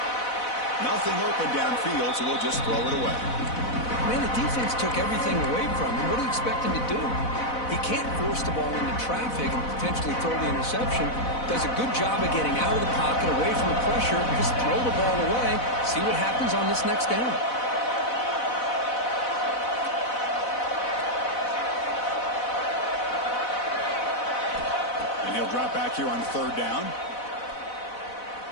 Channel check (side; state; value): right; late; 4.0 ms